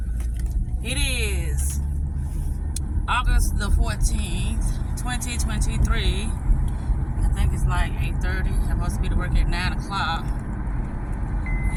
It is August the 14th, 2023. I think it's like 8:30. I'm supposed to be to work at 9 o'clock.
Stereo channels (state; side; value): identical; both; correlation 1.00